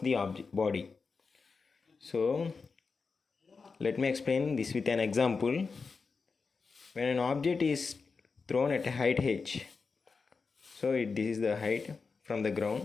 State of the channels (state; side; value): quieter; right; 4.8 dB